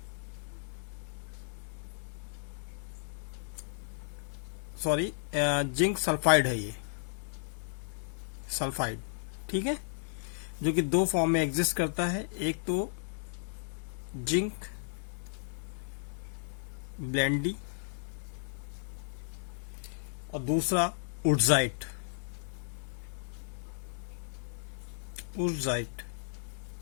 सॉरी, जिंक सल्फाइड है ये, सल्फाइड, ठीक है, जो कि दो फॉर्म में एग्जिस्ट करता है। एक तो जिंक ब्लेंडी और दूसरा उर्जाइट, उर्जाइट,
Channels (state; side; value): silent; right; digital silence